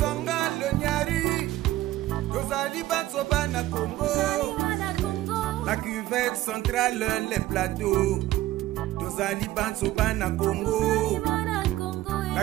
le nyari Tozali Batsoba na Congo La cuvette centrale les plateaux Tozali Batsoba na Congo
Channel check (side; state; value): left; quieter; 15.7 dB